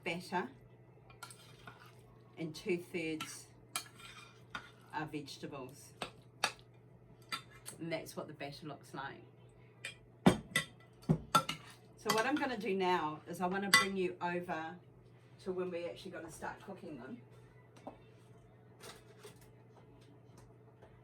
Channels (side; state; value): both; identical; correlation 1.00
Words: batter and 2/3 are vegetables. And that's what the batter looks like. So what I'm going to do now is I want to bring you over to when we're actually going to start cooking them.